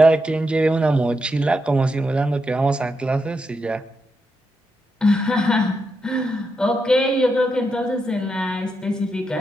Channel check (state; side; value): normal; both; correlation 0.84